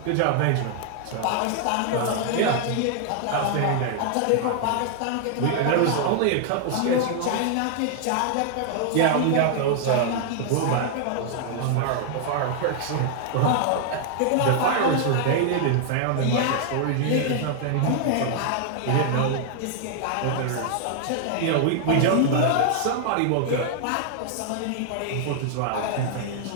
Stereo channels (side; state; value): both; different; correlation 0.00